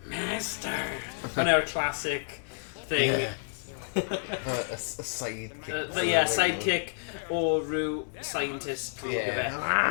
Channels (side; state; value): right; silent; digital silence